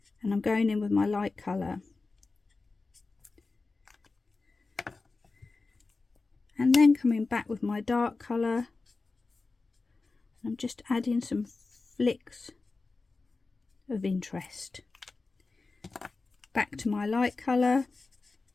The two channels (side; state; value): right; quieter; 3.8 dB